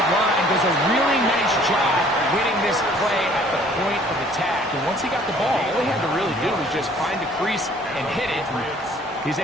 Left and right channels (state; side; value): normal; both; correlation 0.56